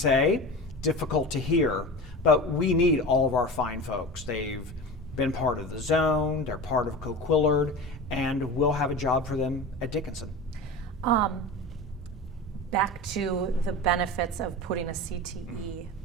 difficult to hear, but we need all of our fine folks. They've been part of the zone, they're part of Coquillard, and we'll have a job for them at Dickinson. Back to the benefits of putting a CTE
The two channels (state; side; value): normal; both; correlation 0.30